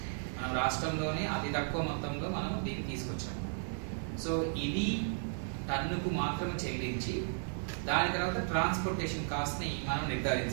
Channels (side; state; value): left; silent; 55 dB below the other